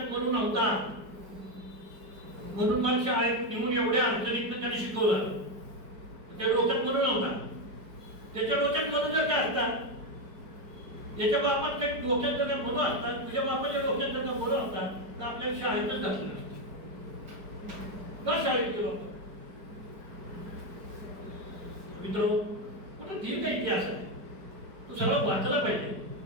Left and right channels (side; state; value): left; late; 4.8 ms